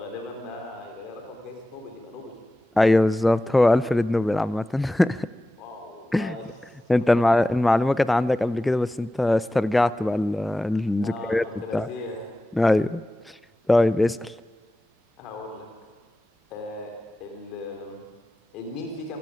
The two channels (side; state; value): both; normal; correlation 0.96